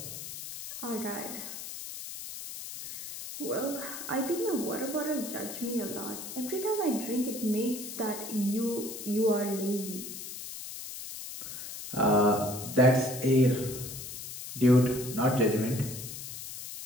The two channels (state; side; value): noise; left; hiss, 9 dB below the sound